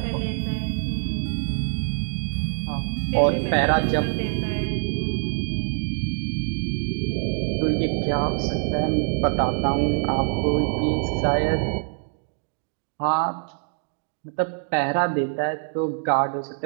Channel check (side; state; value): left; silent; 61 dB below the other